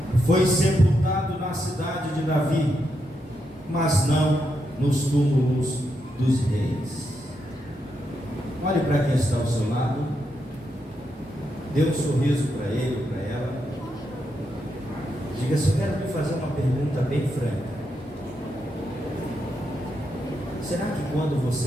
Foi sepultado na cidade de Davi, mas não nos túmulos dos reis. Olhe para quem está ao seu lado, dê um sorriso para ele ou para ela. Diga assim: eu quero lhe fazer uma pergunta bem franca. Será que quando você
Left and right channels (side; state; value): both; normal; correlation 0.82